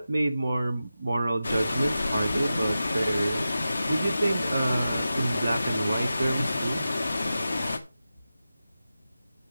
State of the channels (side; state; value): both; inverted; correlation -0.92